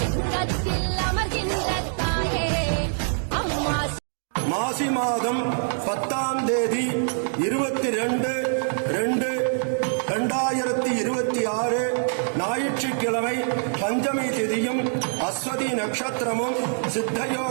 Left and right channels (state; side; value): silent; left; 62 dB below the other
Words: மாசி மாதம் 10ஆம் தேதி 22/2/2026 ஞாயிற்றுக்கிழமை பஞ்சமி திதியும் அஸ்வதி நட்சத்திரமும்